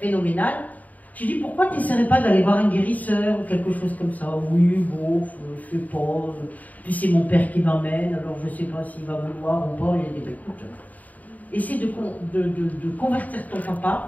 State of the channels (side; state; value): right; late; 0.076 ms